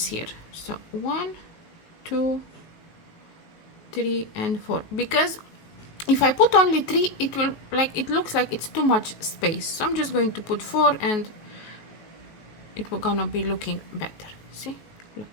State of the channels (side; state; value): right; late; 19 ms